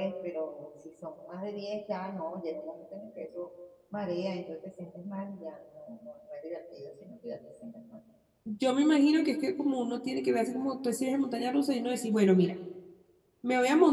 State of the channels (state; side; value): identical; both; correlation 1.00